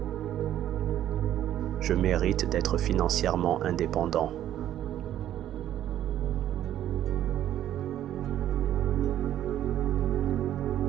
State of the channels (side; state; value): left; quieter; 11.8 dB